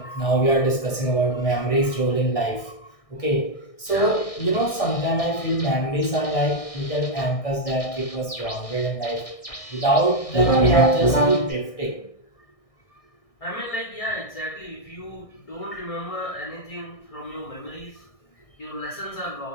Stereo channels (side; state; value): right; late; 1.6 ms